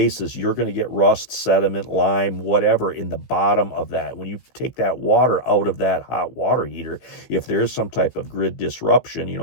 you're going to get rust, sediment, lime, whatever in the bottom of that. When you take that water out of that hot water heater, if there is some type of grid disruption,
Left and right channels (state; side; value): late; right; 16 ms